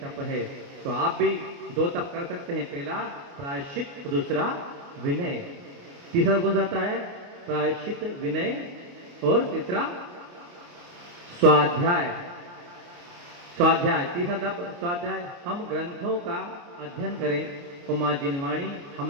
तप है। तो आप भी 2 तप कर सकते हैं, पहला प्रायश्चित, दूसरा विनय। तीसरा कौन सा आता है? प्रायश्चित, विनय और तीसरा स्वाध्याय। स्वाध्याय, तीसरा तप स्वाध्याय। हम ग्रंथों का अध्ययन करें और माँ जिनवाणी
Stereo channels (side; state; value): left; late; 29 ms